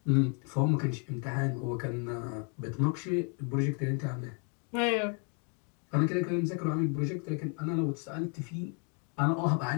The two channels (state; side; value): quieter; right; 39.0 dB